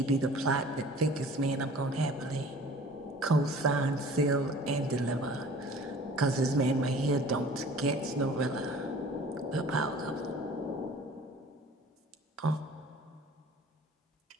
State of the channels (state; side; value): normal; both; correlation 0.46